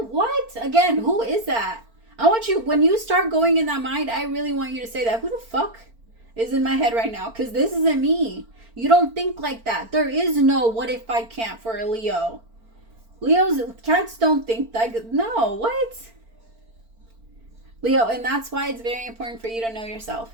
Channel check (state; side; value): late; left; 4.4 ms